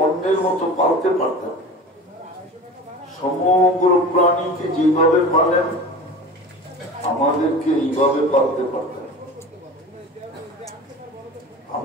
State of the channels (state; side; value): normal; both; correlation 0.35